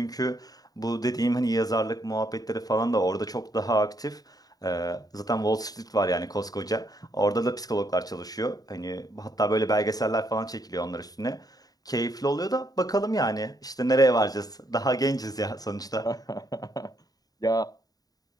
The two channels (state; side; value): late; right; 0.18 ms